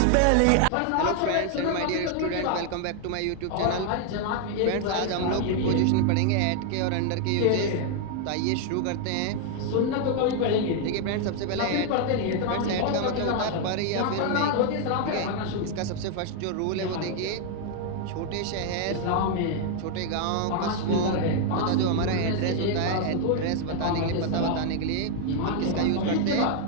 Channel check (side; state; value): both; different; correlation 0.00